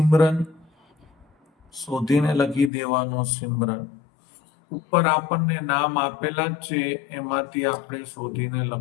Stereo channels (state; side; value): drops out; right; at 2.7 s